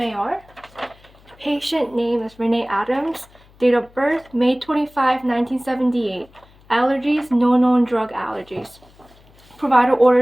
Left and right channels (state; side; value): noise; left; hum, 28 dB below the sound